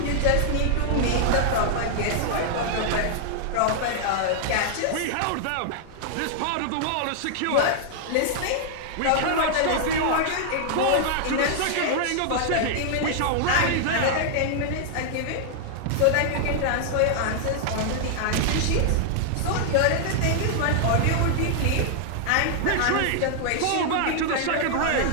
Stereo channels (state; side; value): different; both; correlation -0.01